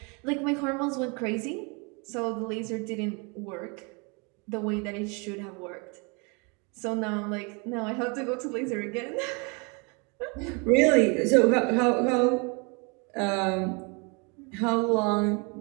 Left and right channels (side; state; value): left; quieter; 31.9 dB